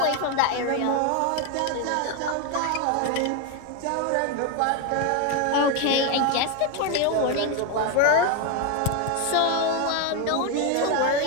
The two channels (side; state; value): both; different; correlation 0.02